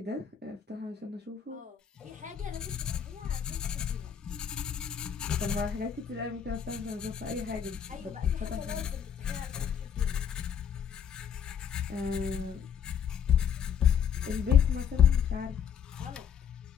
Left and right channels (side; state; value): right; quieter; 7.9 dB